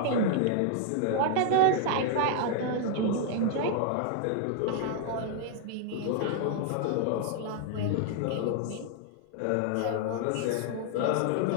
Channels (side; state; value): both; different; correlation 0.00